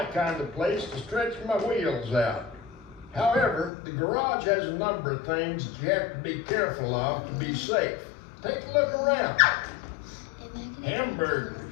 kind of place to stretch my wheels out. However, the garage has a number of things that you have to be careful of to be safe. Take a look around. Hamburgers.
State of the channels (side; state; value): right; drops out; at 3.7 s